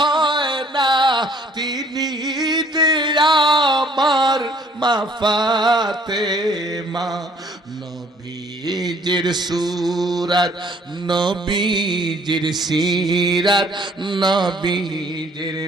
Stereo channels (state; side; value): normal; both; correlation 0.59